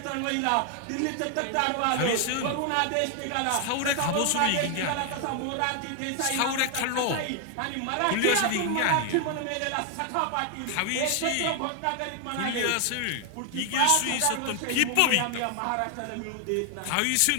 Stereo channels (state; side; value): different; both; correlation 0.00